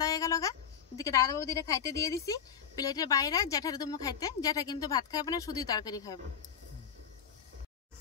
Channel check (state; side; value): quieter; right; 7.9 dB